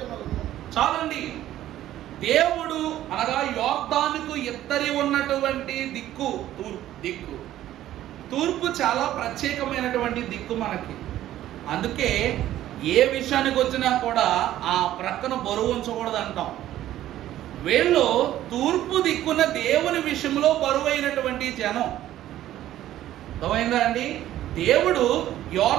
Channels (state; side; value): quieter; left; 13.2 dB